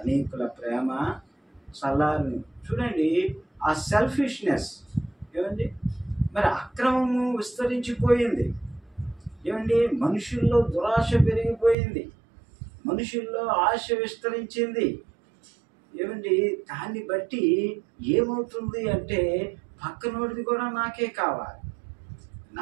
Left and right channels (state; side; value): drops out; left; at 11.8 s